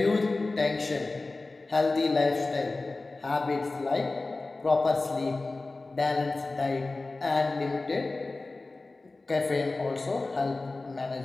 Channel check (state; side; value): quieter; right; 3.3 dB